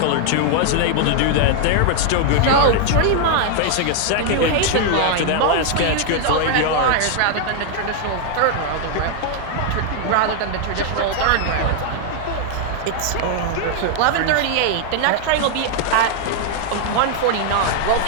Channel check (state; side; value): different; both; correlation 0.00